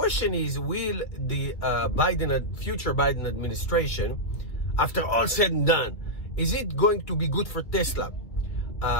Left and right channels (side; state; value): right; late; 2.2 ms